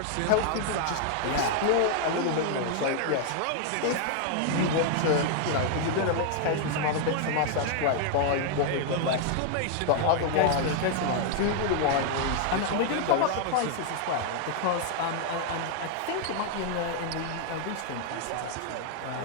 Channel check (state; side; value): different; both; correlation 0.00